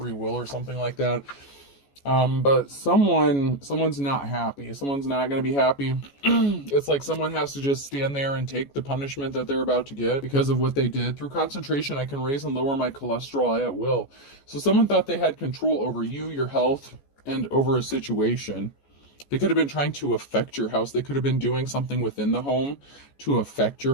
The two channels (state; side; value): late; right; 14 ms